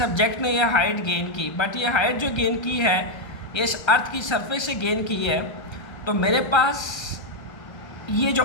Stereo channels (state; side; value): late; right; 1.3 ms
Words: ने यह हाइट गेन की, बट ये हाइट जो गेन की है ये इस अर्थ की सरफेस से गेन की है। तो मेरे पास ये जो